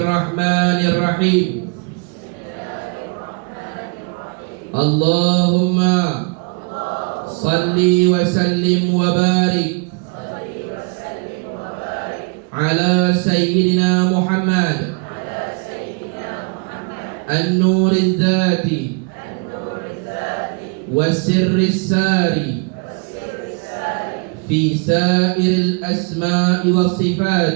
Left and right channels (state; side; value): quieter; left; 35.8 dB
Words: Allahumma salli wa sallim wa barik ala sayyidina Muhammad an-nur al-dhati wa sirri al-sari fi sa'ir al-asma'i wa